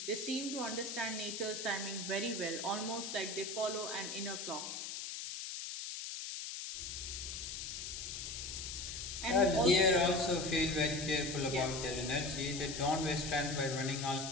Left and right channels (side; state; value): left; noise; hiss, 6 dB below the sound